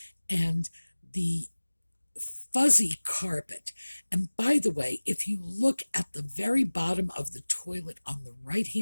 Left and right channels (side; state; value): both; inverted; correlation -1.00